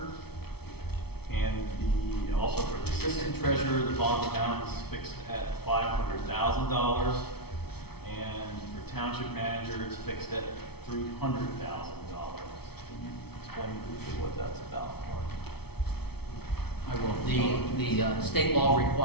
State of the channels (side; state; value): right; late; 0.96 ms